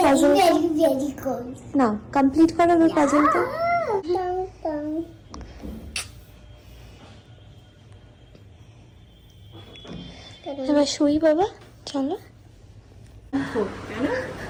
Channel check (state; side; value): identical; both; correlation 1.00